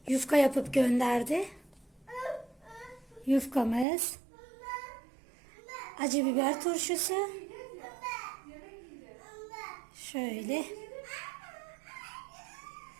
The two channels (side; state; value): left; drops out; at 3.9 s